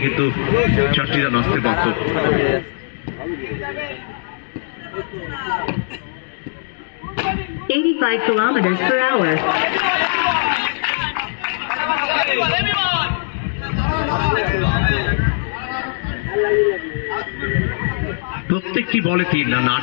কিন্তু 4টি রান আসতে পারত। 85 kilometers per hour. প্রত্যেকটি বলে 3 রান,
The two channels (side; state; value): right; silent; digital silence